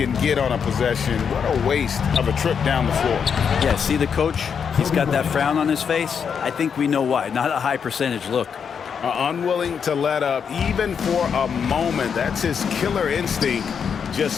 get on a possession, what a waste of a trip down the floor. Yeah, see the coach? He's got that frown on his face. I think we know why. Not a high percentage look. Unwilling to let up even for a moment. That's his killer instinct, just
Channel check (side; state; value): right; quieter; 6.9 dB